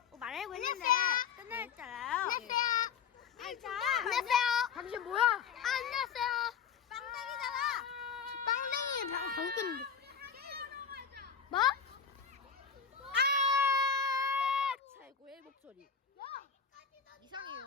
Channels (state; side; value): quieter; right; 6.7 dB